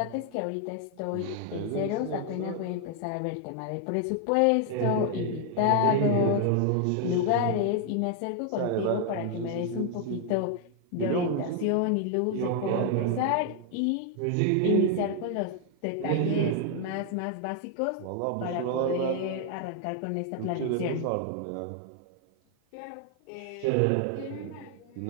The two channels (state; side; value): different; both; correlation 0.00